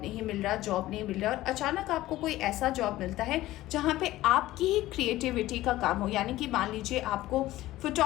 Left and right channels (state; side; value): quieter; right; 16.1 dB